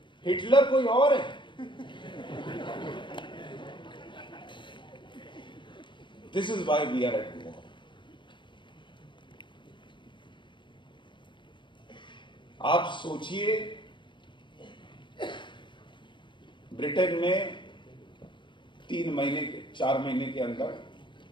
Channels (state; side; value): late; right; 0.23 ms